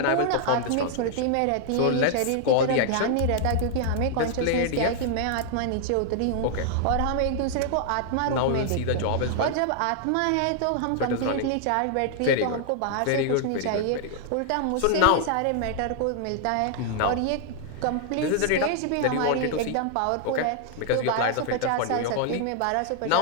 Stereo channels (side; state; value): both; different; correlation 0.00